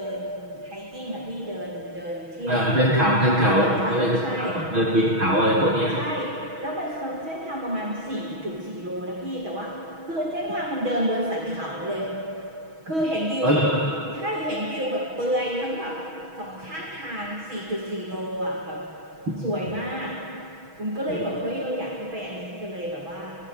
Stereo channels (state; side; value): late; left; 6.2 ms